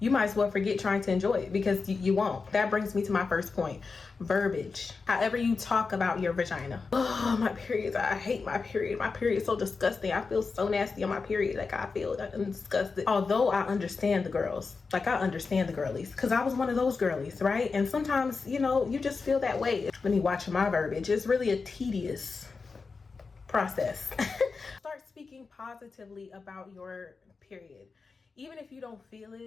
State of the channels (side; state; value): right; quieter; 4.6 dB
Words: might as well forget trying to enjoy it, because you won't. That brings me to my first point: verbiage. However you talk about your vagina. Oh, my periods, I hate my period. My period is so disgusting. I feel so nasty on my period. Like, I feel disgusted. Although I understand the girls, like I understand the girlies, because I was one of those girlies, right? And sometimes, you know, you just feel that way. When you watch my verbiage, it's really a tedious process. Start speaking positively about your period. Even if you don't feel